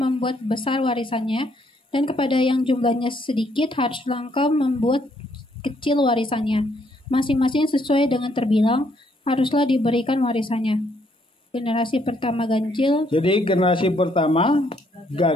besar warisannya, dan kepada yang jumlahnya sedikit, haruslah engkau membuat kecil warisannya. Masing-masing sesuai dengan terbilang, haruslah diberikan warisannya. Generasi pertama ganjil. Jadi generasi pertama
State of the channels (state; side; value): normal; both; correlation 0.70